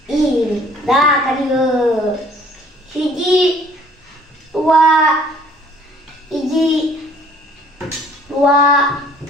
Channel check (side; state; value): both; normal; correlation 0.56